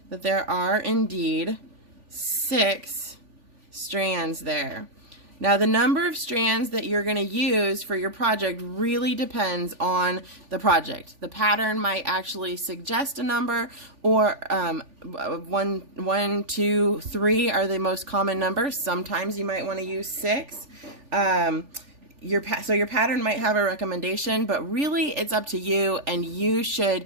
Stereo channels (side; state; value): left; late; 3.4 ms